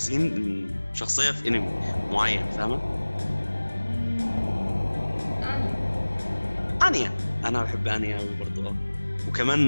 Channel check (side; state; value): both; inverted; correlation -1.00